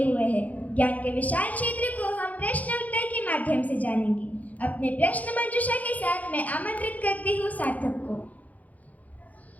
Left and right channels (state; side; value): late; right; 0.076 ms